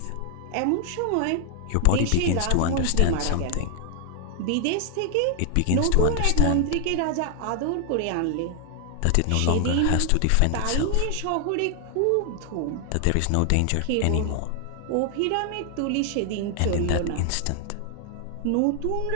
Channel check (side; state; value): both; different; correlation 0.00